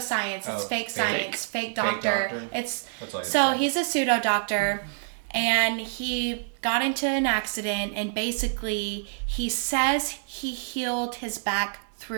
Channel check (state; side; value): silent; left; 60 dB below the other